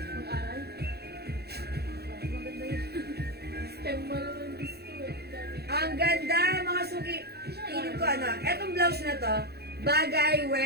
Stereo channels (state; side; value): late; left; 0.47 ms